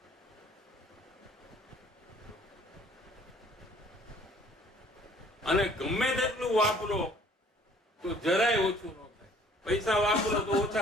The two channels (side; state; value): both; normal; correlation 0.56